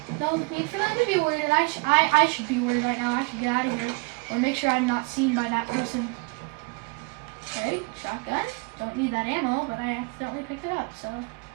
need for them to be worried, and I should be worried right now. I should get out of here, or make sure I'm not seen by that person. Okay, shotgun. Don't need that ammo, but I accidentally picked it up, so.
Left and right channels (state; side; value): quieter; left; 31.5 dB